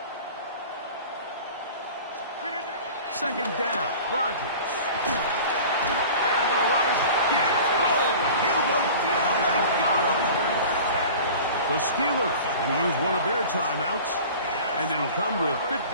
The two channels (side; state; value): both; inverted; correlation -0.40